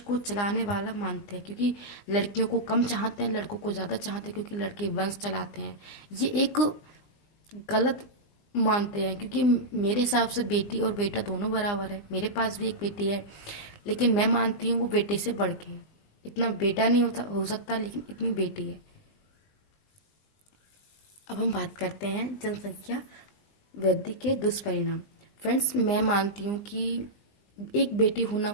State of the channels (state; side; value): late; right; 20 ms